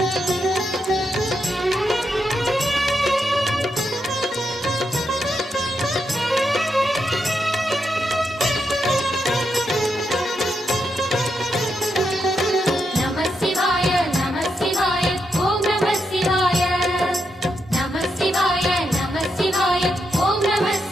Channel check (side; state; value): both; normal; correlation 0.83